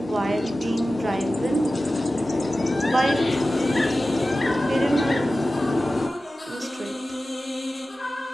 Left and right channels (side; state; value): both; normal; correlation 0.95